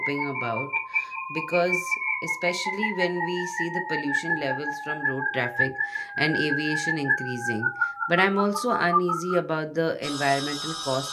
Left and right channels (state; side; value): identical; both; correlation 1.00